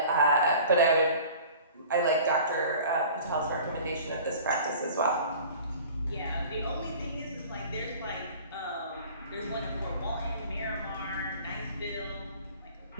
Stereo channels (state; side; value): inverted; both; correlation -0.44